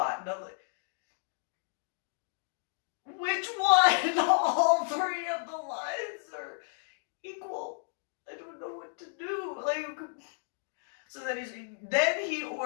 And I'm like, which one? All three of the lines are equal. I don't know what to do. Like, so then he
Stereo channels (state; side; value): silent; right; digital silence